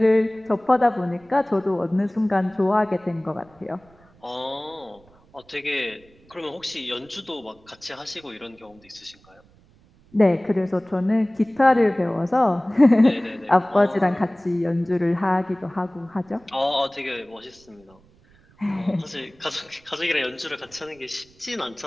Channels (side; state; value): right; noise; rumble, 29 dB below the sound